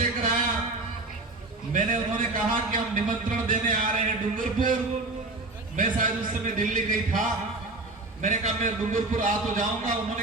कराया। मैंने उन्होंने कहा कि हम निमंत्रण देने आ रहे हैं डूंगरपुर। मैं शायद उस समय दिल्ली गई था। मैंने कहा मैं डूंगरपुर आ तो जाऊंगा।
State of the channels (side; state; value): left; quieter; 3.0 dB